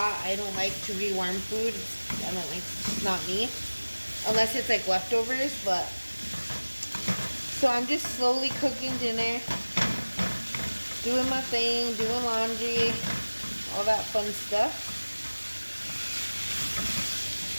I don't like to rewarm food. It's not me. Unless it's like leftovers, but. So I'm just slowly cooking dinner. Doing my thing, doing laundry, all that fun stuff.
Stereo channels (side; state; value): both; inverted; correlation -1.00